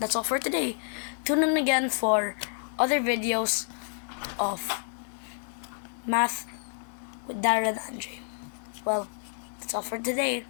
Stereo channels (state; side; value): silent; right; 57 dB below the other